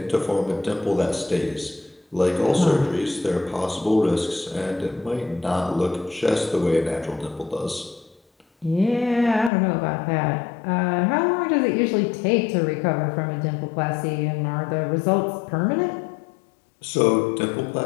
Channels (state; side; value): drops out; right; at 9.5 s